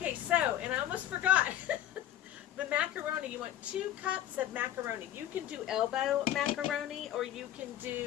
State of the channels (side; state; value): right; quieter; 12.1 dB